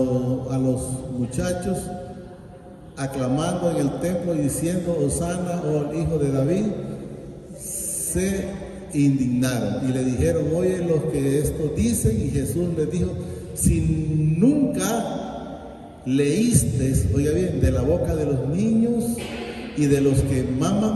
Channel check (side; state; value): both; identical; correlation 1.00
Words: muchachos, aclamando en el templo y diciendo, Hosana, oh el hijo de David, se indignaron y le dijeron, oye lo que esto dicen. Y Jesús les dijo, si nunca leíste, oiga bien, de la boca de los niños y de los que